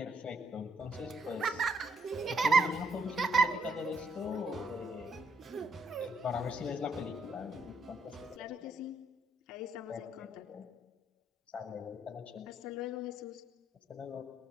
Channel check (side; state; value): both; normal; correlation 0.73